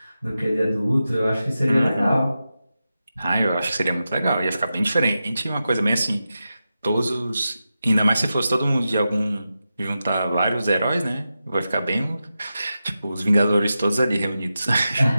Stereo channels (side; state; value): both; inverted; correlation -0.91